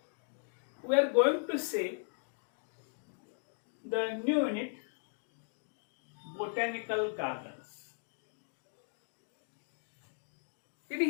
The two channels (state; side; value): silent; right; digital silence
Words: we are going to see the new unit, botanical gardens. In